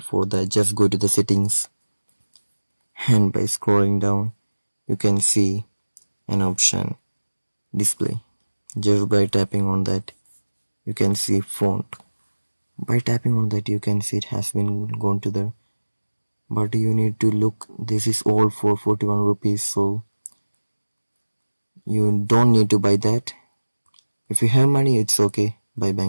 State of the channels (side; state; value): both; inverted; correlation -1.00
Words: For that, just go to the settings and by scrolling down you can see an option display. Just by tapping on that you can see font. By tapping on that you can see it has been gone to the, but you need to look, this is all for 41 rupees, so you don't need to buy that. If you have money, it's okay by